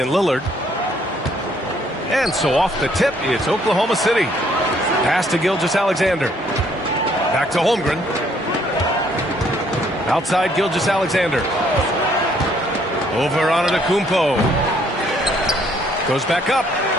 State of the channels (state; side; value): normal; both; correlation 0.65